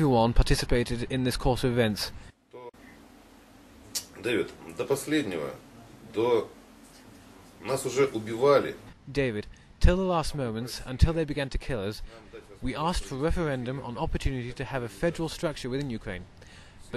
participated in this course of events. Дэвид, до последнего, нас уже убивали. David, till the last moments, until they began to kill us, we asked for a referendum on opportunity to have a federal structure within Ukraine.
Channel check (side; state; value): both; identical; correlation 1.00